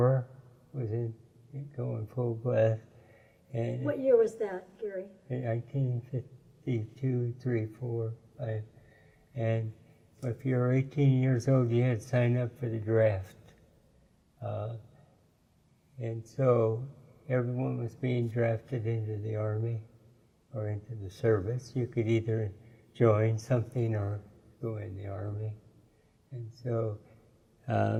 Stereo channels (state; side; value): identical; both; correlation 1.00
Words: was going full blast. And what year was that, Garry? In 1952, 3, 4, 5. And if you were 18 years old, you had to sign up for the draft. And so everyone was being drafted into the Army or into the service. You could either join something or go in the Army. And so